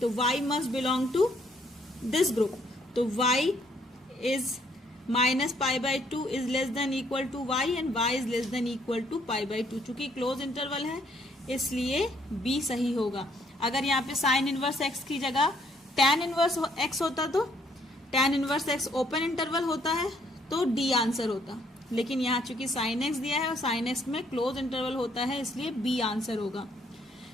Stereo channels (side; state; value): both; normal; correlation 0.67